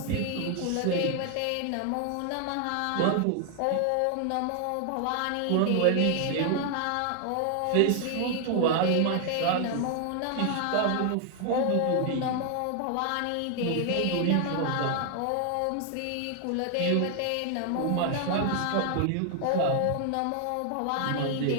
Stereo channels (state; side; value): different; both; correlation 0.00